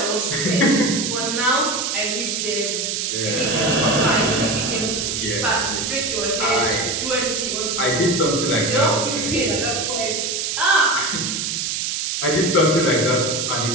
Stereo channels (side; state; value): right; noise; hiss, 1 dB below the sound